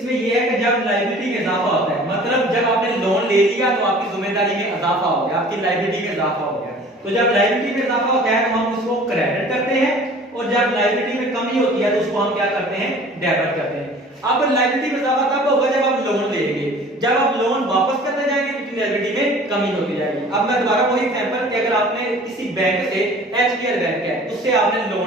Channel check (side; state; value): both; normal; correlation 0.47